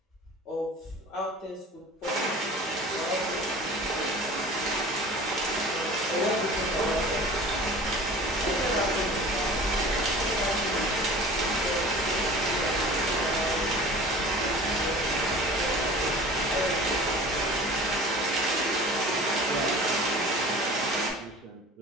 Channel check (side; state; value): both; normal; correlation 0.41